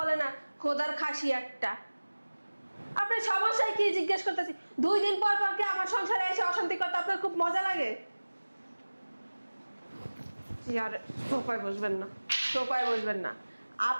না, খোদার খাসি একটা। আপনার সমস্যায় কি জিজ্ঞেস করতেছি? 2 দিন পর পর কি আমার সংসারে এসে অশান্তি করতে আপনার খুব মজা লাগে? আর সোফায় বসবেন না, সোফায় বসবেন না।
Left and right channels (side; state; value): both; inverted; correlation -1.00